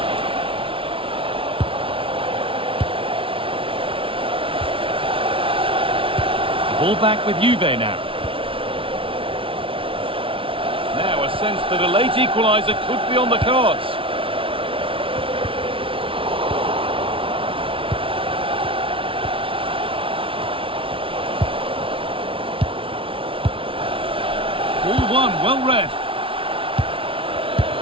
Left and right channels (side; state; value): left; late; 0.26 ms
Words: Ball back with Juve now. Now a sense that a late equaliser could be on the cards. Ball one, well read.